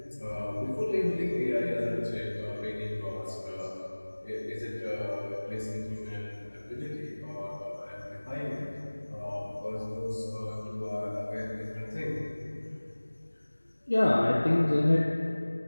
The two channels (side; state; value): both; inverted; correlation -1.00